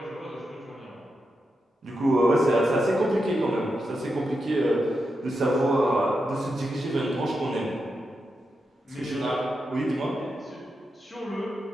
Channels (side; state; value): both; normal; correlation 0.87